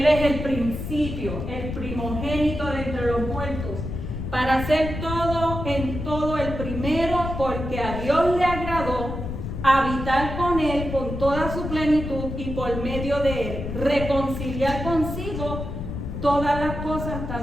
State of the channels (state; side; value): noise; left; rumble, 6 dB below the sound